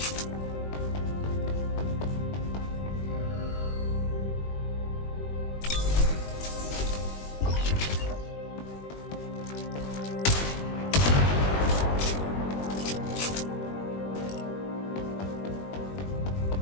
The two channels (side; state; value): right; late; 21 ms